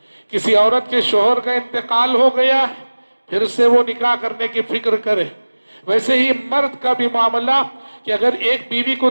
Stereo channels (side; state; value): both; inverted; correlation -1.00